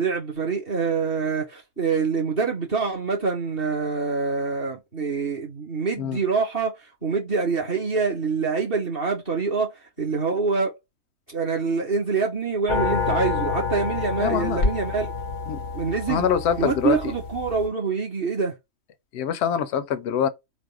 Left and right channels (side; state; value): right; late; 3.1 ms